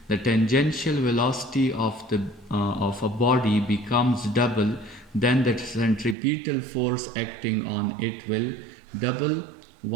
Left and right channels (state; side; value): drops out; left; at 6.2 s